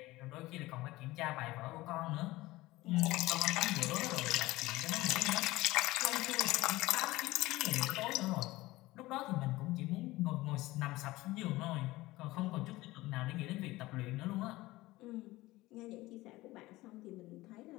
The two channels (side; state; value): right; quieter; 18.9 dB